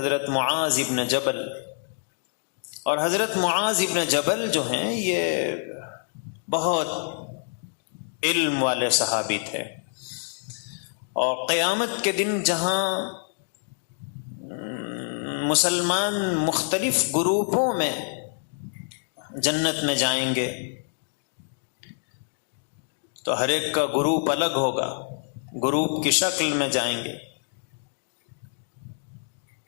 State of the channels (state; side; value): silent; right; digital silence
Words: معاذ ابن جبل، اور حضرت معاذ ابن جبل جو ہیں یہ بہت علم والے صحابی تھے، اور قیامت کے دن جہاں مسلمان مختلف گروپوں میں جنت میں جائیں گے تو ہر ایک کا گروپ الگ ہوگا، گروپ کی شکل میں جائیں گے،